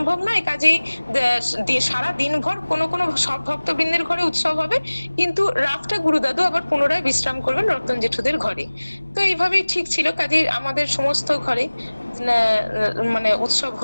নয়, কাজেই সারা দিনভর কোনো কোনো সব ভক্তবৃন্দের ঘরে উৎসব হবে, কিন্তু রাতটা গুরুদাদু আবার পুনরায় বিশ্রাম করবেন রতন জেঠুদের ঘরে। তো এইভাবেই ঠিক ছিল, কাজেই আমাদের সমস্ত ঘরে মানে উৎসব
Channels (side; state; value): both; inverted; correlation -1.00